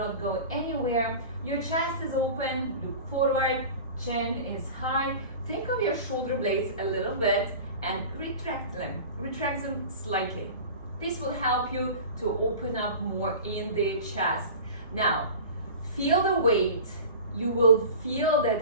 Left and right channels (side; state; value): both; inverted; correlation -0.36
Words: go anywhere. Your chest is open, look forward, chin is high. Think of your shoulder blades a little bit and retract them slightly. This will help you to open up more in the chest. Now, feel the weight. You will feel